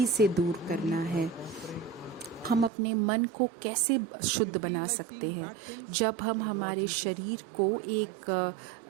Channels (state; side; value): drops out; left; at 2.7 s